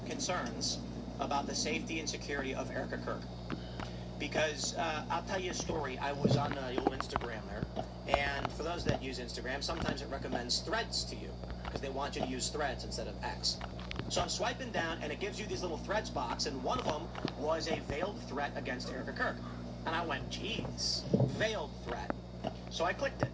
concerns about the safety and security of Erica Kirk. Because I'll tell you a story. I was on the old Instagram there, and for those that use Instagram, sometimes it recommends Threads to you, because they want you to use Threads instead of X. So I'm swiping down, and it gives you these little Threads box, and one of them was a veiled threat against Erica Kirk. And I went, geez, veiled threat. So I clicked it.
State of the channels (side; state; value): both; identical; correlation 1.00